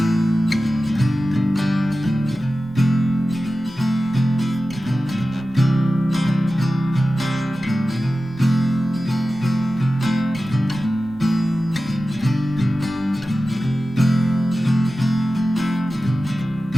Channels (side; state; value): both; normal; correlation 0.94